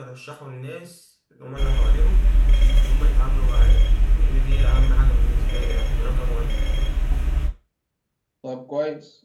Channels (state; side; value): identical; both; correlation 1.00